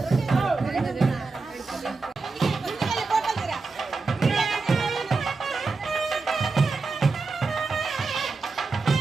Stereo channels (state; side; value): quieter; left; 4.1 dB